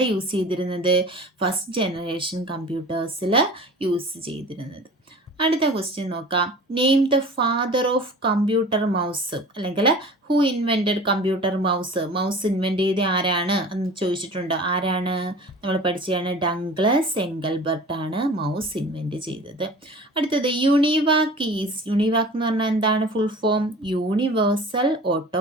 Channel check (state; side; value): normal; both; correlation 0.40